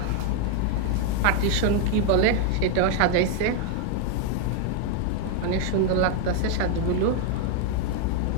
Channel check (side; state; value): both; different; correlation 0.01